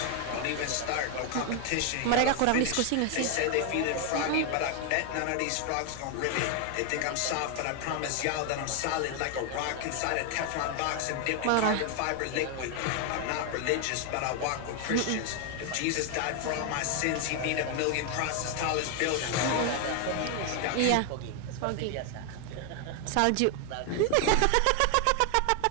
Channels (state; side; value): different; both; correlation 0.01